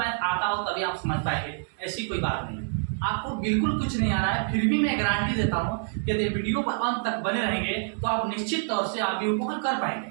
आता हो तभी आप समझ पाएंगे, ऐसी कोई बात नहीं। आपको बिल्कुल कुछ नहीं आ रहा है, फिर भी मैं गारंटी देता हूं कि यदि वीडियो पर अंत तक बने रहेंगे तो आप निश्चित तौर से आव्यूह को हल कर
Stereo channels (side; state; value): left; silent; digital silence